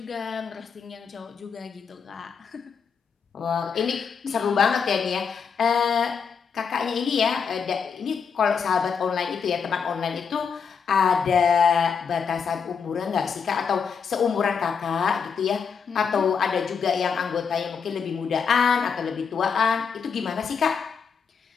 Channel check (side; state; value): right; quieter; 6.3 dB